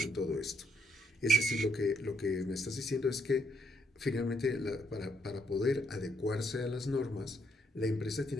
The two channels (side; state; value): both; normal; correlation 0.73